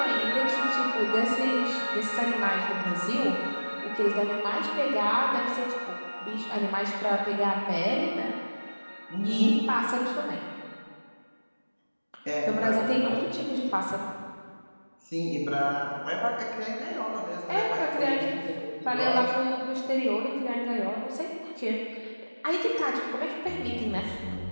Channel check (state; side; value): inverted; both; correlation -1.00